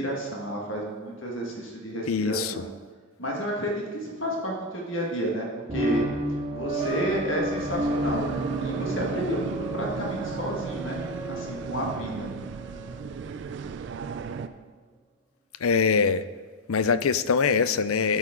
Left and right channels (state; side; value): normal; both; correlation 0.08